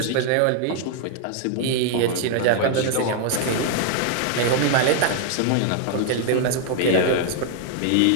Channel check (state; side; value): different; both; correlation 0.00